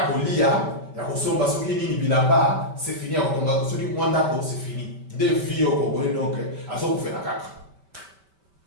ont lié, il y a qu'on s'en va sur qui ni là-bas, c'est fini, on va sur qui Mwanda, c'est fini. Des vies au Congo, donc, à ce qu'on fait la caca.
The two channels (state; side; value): late; left; 5.2 ms